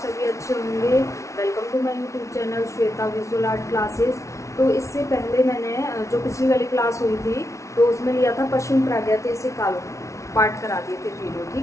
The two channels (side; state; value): right; late; 0.14 ms